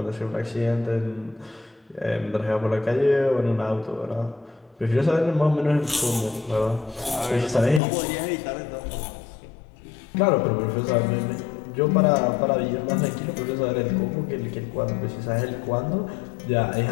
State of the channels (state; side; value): drops out; right; at 7.8 s